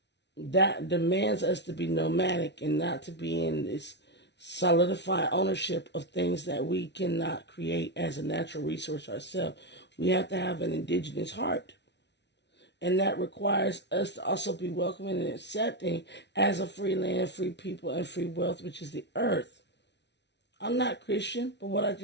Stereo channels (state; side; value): late; right; 0.50 ms